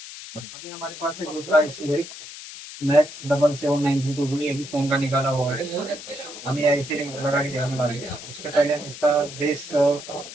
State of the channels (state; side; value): noise; left; hiss, 13 dB below the sound